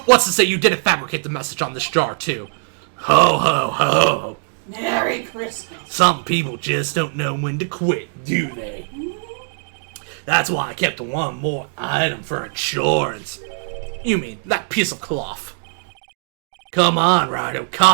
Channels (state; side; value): silent; left; 65 dB below the other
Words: what's to say you didn't fabricate the message on this jar too? Ho ho ho! Merry Christmas! Some people just don't know when to quit, do they? That's why I kept one more item for insurance. You mean that piece of cloth? Come on, Rhino,